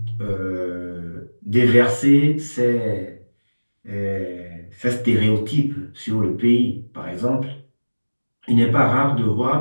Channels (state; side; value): inverted; both; correlation -1.00